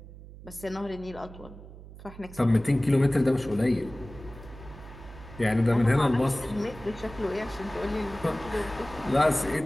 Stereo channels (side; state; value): right; noise; hum, 16 dB below the sound